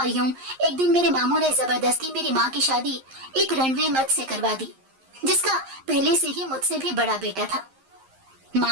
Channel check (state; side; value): late; left; 11 ms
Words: یوں ایک دن میرے ماموں نے زبردستی میری ماں کی شادی ایک رنوے مرد سے کروا دی، جس کا پہلے سے ہی مجھ سے بھی بڑا بیٹا تھا۔